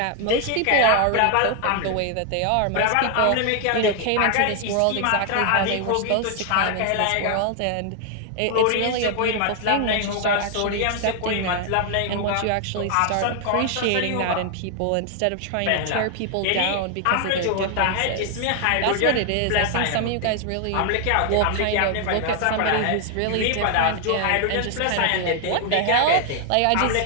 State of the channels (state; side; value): different; both; correlation 0.00